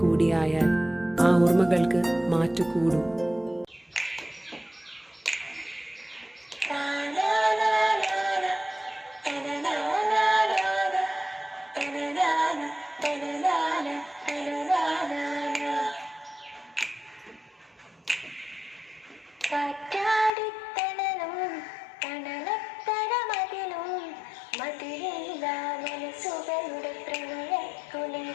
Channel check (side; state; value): right; drops out; at 20.3 s